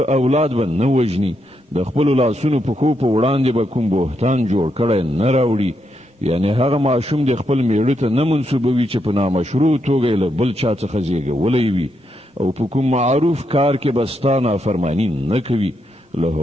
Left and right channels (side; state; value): both; normal; correlation 0.81